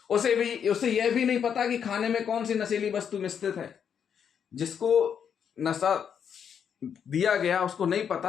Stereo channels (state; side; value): quieter; right; 7.8 dB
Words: उसे यह भी नहीं पता कि खाने में कौन सी नशीली वस्तु मिश्रित है। जिसको नशा दिया गया उसको नहीं